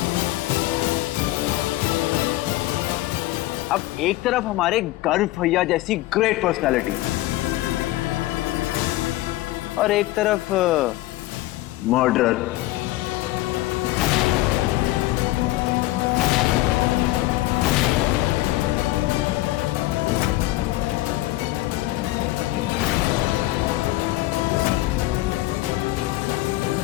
अब एक तरफ हमारे गर्व भैया जैसी ग्रेट पर्सनालिटी और एक तरफ मर्डरर।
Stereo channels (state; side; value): quieter; right; 17.4 dB